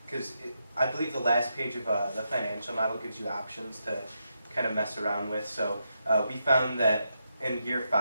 because I believe the last page of the financial model gives you options to kind of mess around with. So we found that in year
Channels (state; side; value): inverted; both; correlation -0.83